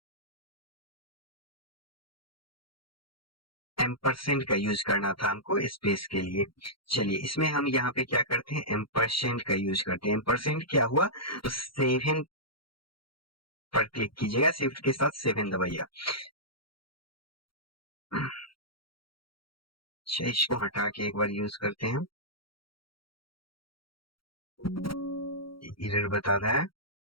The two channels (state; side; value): late; right; 0.74 ms